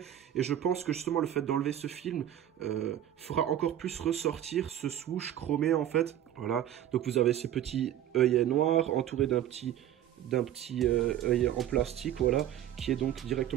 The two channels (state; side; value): quieter; left; 11.4 dB